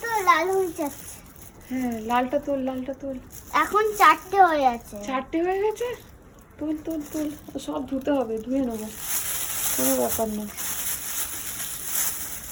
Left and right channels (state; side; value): identical; both; correlation 1.00